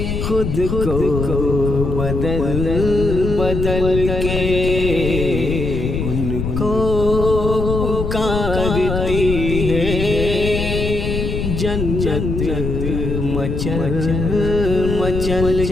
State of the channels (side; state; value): left; noise; rumble, 2 dB below the sound